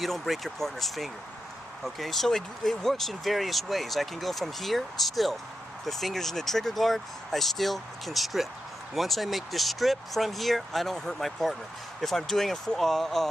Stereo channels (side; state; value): both; normal; correlation 0.87